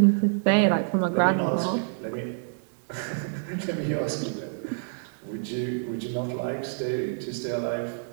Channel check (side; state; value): left; silent; digital silence